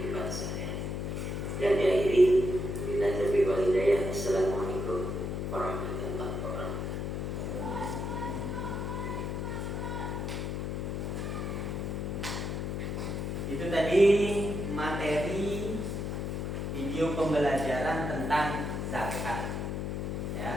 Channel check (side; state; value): left; noise; hum, 2 dB below the sound